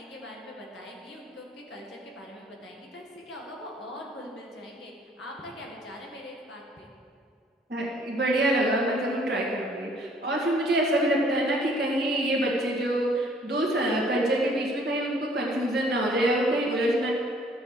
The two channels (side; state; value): both; normal; correlation 0.59